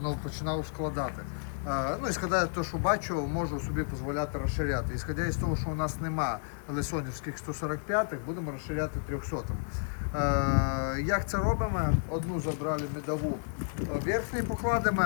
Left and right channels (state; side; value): silent; right; digital silence